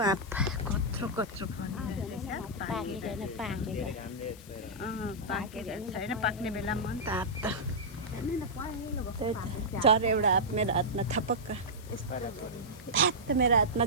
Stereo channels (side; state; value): left; noise; hiss, 20 dB below the sound